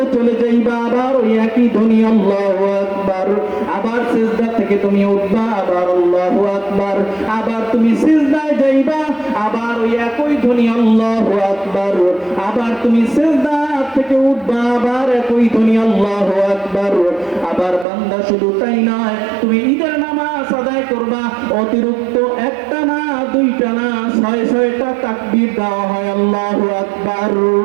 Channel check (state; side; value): drops out; left; at 17.9 s